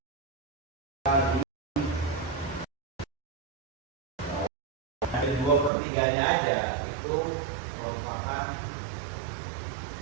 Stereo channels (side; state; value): left; drops out; at 5.7 s